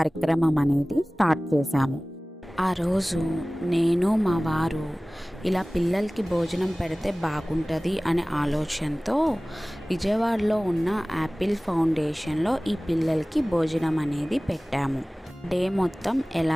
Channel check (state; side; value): normal; both; correlation 0.98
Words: అనేది స్టార్ట్ చేశాము. ఆ రోజు నేను మా వారు ఇలా పిల్లలకి భోజనం పెడితే బాగుంటుంది అనే ఆలోచనతో విజయవాడలో ఉన్న యాపిల్ ఫౌండేషన్లో ఈ పిల్లలకి భోజనం అనేది పెట్టాము. డే మొత్తం